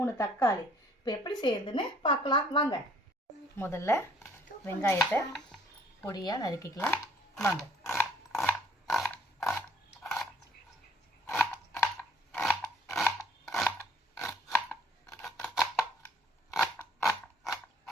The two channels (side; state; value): both; normal; correlation 0.59